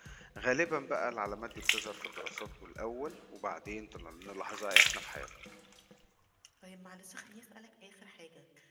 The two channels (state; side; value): identical; both; correlation 1.00